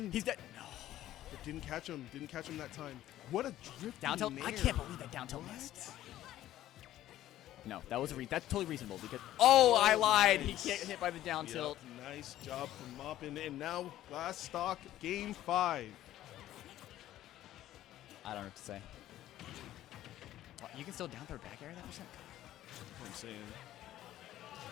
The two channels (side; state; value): right; quieter; 13.5 dB